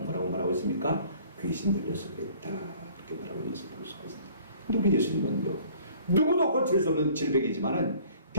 말하고 있습니까? 귀신 들려서 그랬다. 그렇게 말하고 있는 것을 볼 수가 있습니다. 근데 우리 예수님은요, 누구도 고칠 수 없는 질병이지만은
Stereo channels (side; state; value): both; inverted; correlation -0.53